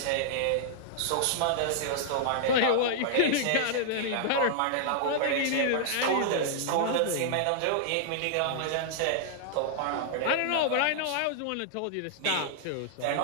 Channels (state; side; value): different; both; correlation -0.01